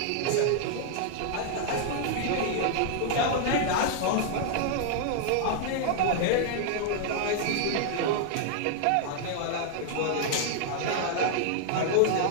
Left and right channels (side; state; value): both; different; correlation 0.00